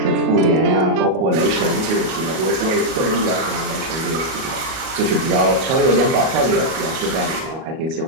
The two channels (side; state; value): left; late; 37 ms